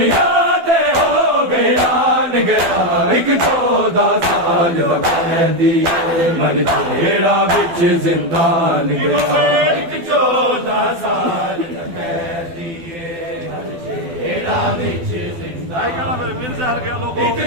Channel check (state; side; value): late; left; 12 ms